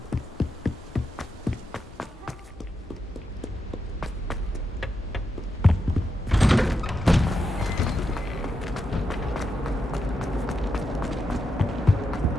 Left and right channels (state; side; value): normal; both; correlation 0.85